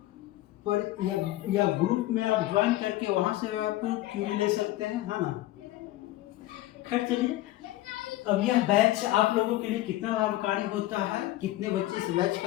पर या ग्रुप में आप ज्वाइन करके वहाँ से आप क्यूरी ले सकते हैं, है ना। खैर चलिए, अब यह बैच आप लोगों के लिए कितना लाभकारी होता है, कितने बच्चे इस बैच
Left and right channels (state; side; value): quieter; right; 16.3 dB